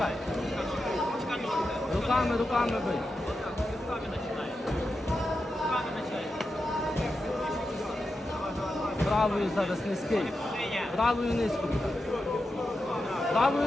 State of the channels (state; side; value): normal; both; correlation 0.89